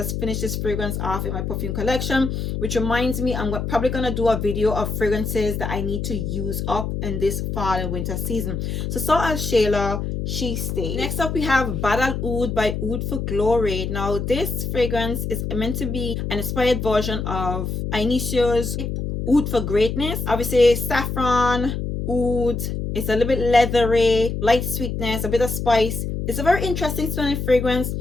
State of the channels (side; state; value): left; noise; hum, 3 dB below the sound